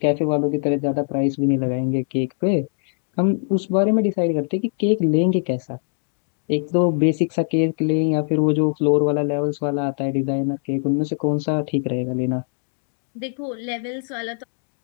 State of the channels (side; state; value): right; silent; digital silence